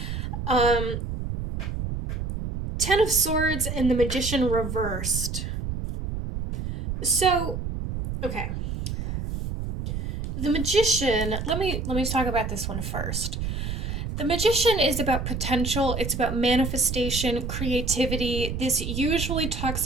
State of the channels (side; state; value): right; noise; rumble, 4 dB below the sound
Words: Um, Ten of Swords and the Magician reversed. So, okay. The Magician, let me talk about this one first. The Magician is about potential, it's about manifestation, creativity. This usually talks